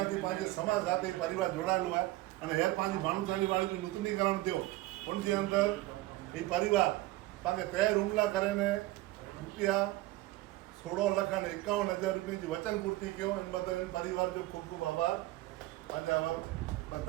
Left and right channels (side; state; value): left; quieter; 17.9 dB